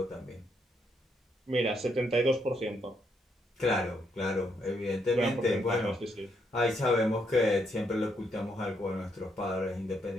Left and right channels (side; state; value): both; normal; correlation 0.76